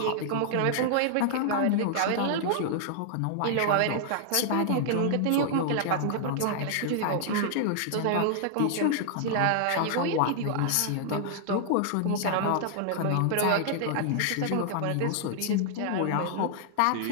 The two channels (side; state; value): both; different; correlation -0.01